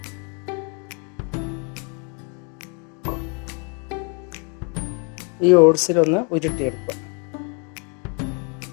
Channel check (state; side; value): quieter; right; 36.2 dB